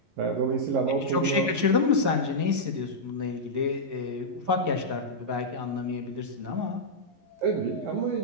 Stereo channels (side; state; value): left; late; 11 ms